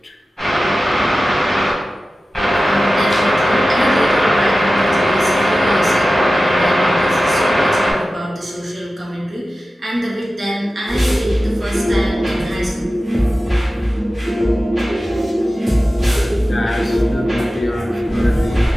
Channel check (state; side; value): normal; both; correlation 0.95